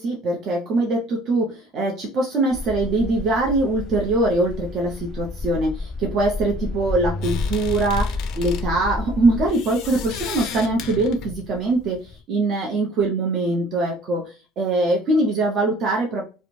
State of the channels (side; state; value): both; normal; correlation 0.54